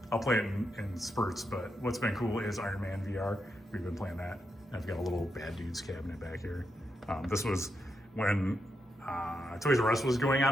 play it in spurts, but what's been cool is Iron Man VR. We've been playing that. And I've got a little Bad Dudes cabinet back here. This was when Toys R Us was going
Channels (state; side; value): normal; both; correlation 0.83